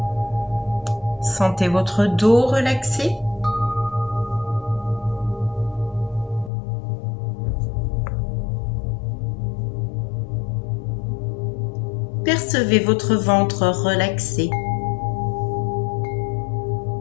Sentez votre dos relaxé. Percevez votre ventre relaxé.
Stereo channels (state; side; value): drops out; right; at 6.5 s